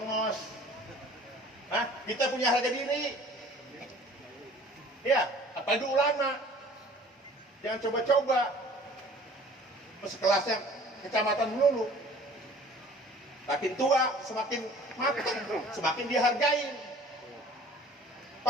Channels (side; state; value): both; normal; correlation 0.49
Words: Hah? Kita punya harga diri, ya, apalagi ulama, jangan coba-coba, sekelasnya kecamatan dulu. Makin tua, semakin matang, semakin dihargain.